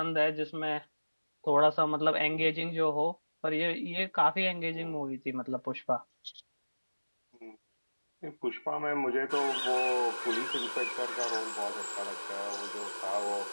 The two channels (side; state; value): both; inverted; correlation -1.00